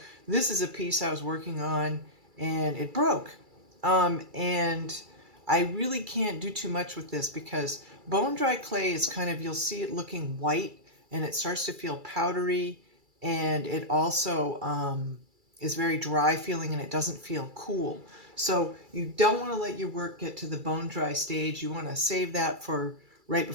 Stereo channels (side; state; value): left; late; 2.3 ms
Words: this is a piece I was working on and it broke. And I really can't do too much with this because bone dry clay is kind of, you'll see it looking white and it starts to feel powdery, and it also is very dry feeling and it doesn't feel cool. So you don't want to let your work get to the bone dry stage. You want to save that for right